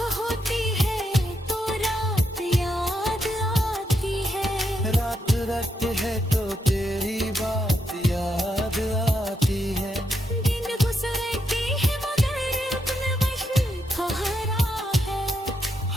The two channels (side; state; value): both; normal; correlation 0.81